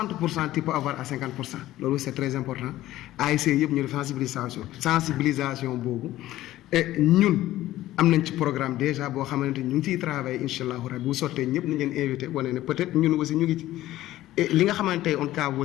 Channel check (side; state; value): right; quieter; 15.1 dB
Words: tu peux avoir à 50% loolu c'est très important ASC yëpp ñu def sensibilisation boobu et ñun am nañ ci programme déjà boo xamante ni ñu ngi ciy travailler incha allahu rabi bu sottee ñëpp nañ leen invité wane ne peut-être ñun aussi ñu ngi ci et li nga xamante ne on cas